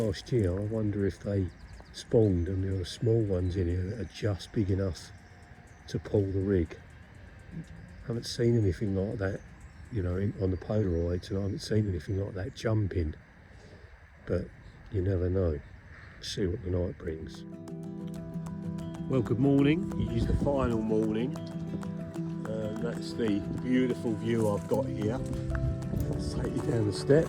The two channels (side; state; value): both; identical; correlation 1.00